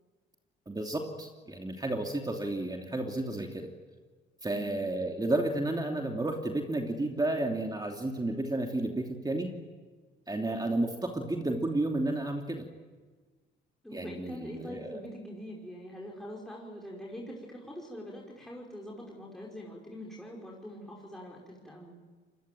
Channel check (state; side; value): normal; both; correlation 0.78